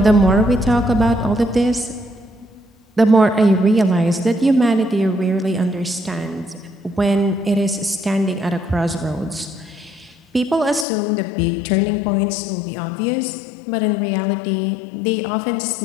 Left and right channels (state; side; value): drops out; right; at 10.9 s